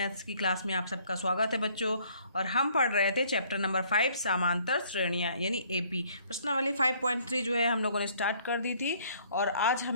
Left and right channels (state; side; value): inverted; both; correlation -0.61